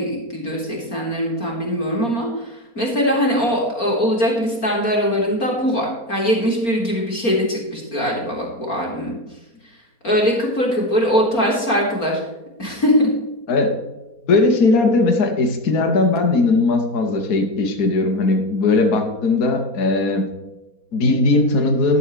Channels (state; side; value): late; right; 4.3 ms